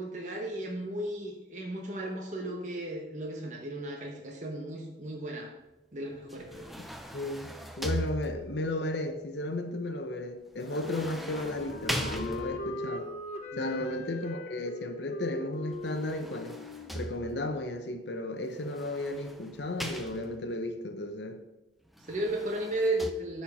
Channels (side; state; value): both; normal; correlation 0.41